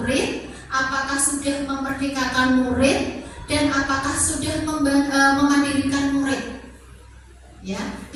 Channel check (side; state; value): both; identical; correlation 1.00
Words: Apakah sudah memerdekakan murid? Dan apakah sudah memandirikan murid? Ya,